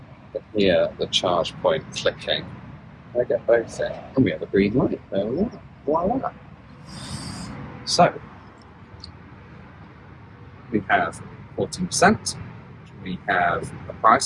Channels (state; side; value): identical; both; correlation 1.00